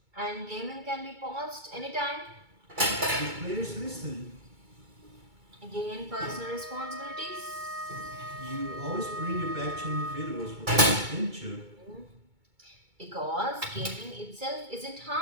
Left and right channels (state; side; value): late; left; 2.2 ms